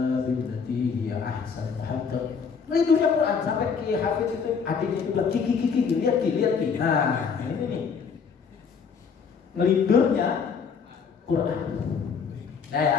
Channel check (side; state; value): right; quieter; 6.0 dB